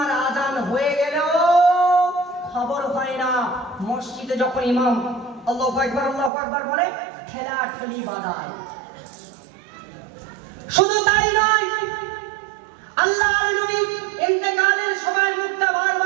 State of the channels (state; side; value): drops out; left; at 6.3 s